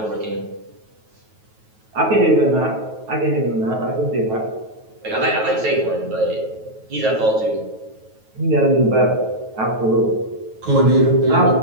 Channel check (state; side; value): late; left; 9.2 ms